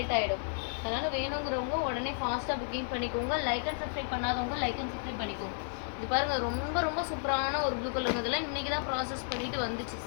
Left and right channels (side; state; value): right; silent; 56 dB below the other